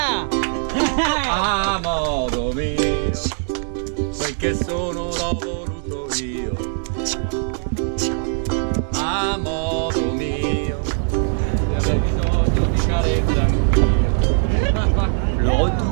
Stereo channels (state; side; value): silent; left; 64 dB below the other